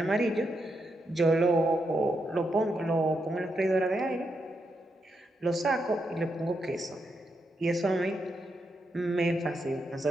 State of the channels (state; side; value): normal; both; correlation 0.82